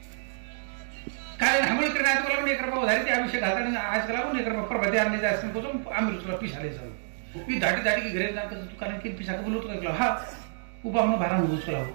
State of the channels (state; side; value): silent; left; digital silence